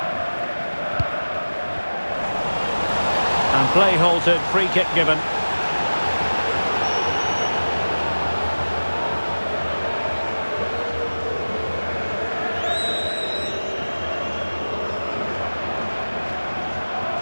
And play halted, free kick given.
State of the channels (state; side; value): inverted; both; correlation -1.00